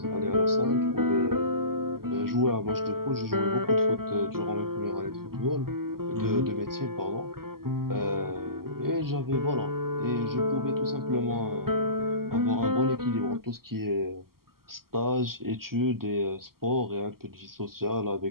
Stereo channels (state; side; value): late; left; 0.93 ms